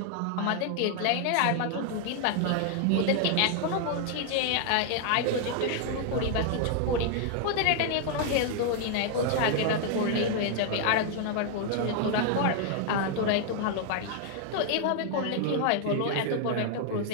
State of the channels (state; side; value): different; both; correlation 0.00